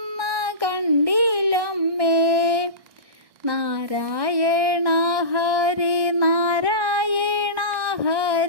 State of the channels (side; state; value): left; late; 1.6 ms